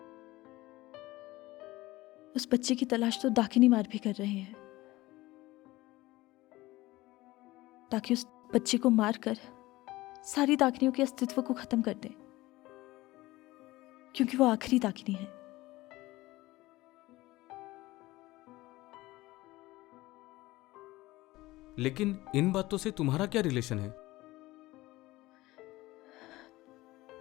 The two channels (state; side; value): quieter; right; 18.7 dB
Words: उस बच्चे की तलाश तो दाकिनी मार भी कर रहे हैं, ताकि उस बच्चे को मारकर सारी दाकिनियों के अस्तित्व को खत्म कर दें, क्योंकि वो आखिरी दाकिनी है। लेकिन इन बातों से तुम्हारा क्या रिलेशन है?